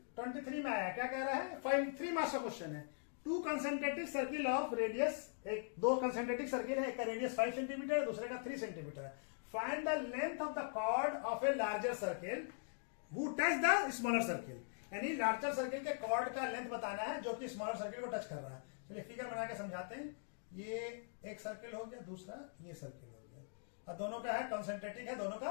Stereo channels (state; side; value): silent; right; digital silence